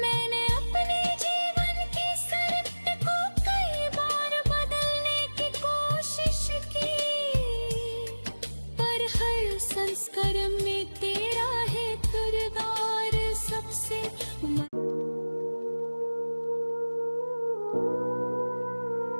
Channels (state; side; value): inverted; both; correlation -1.00